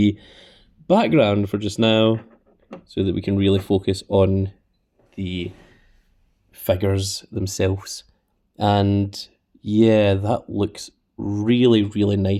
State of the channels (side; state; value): both; identical; correlation 1.00